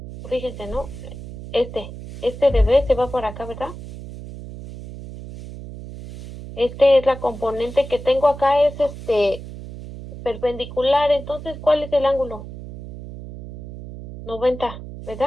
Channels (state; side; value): noise; right; hum, 12 dB below the sound